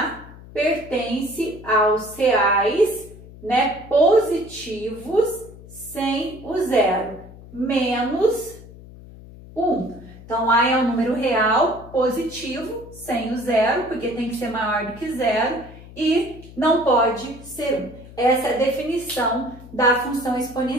pertence aos reais, né, positivos sem o zero, menos 1. Então, a é um número real positivo sem o zero, porque tem que ser maior do que zero e não pode ser 1. Essa é a definição da função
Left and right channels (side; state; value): left; noise; hum, 18 dB below the sound